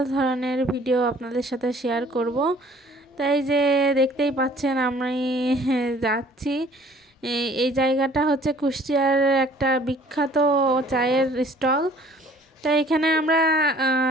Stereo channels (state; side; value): normal; both; correlation 0.54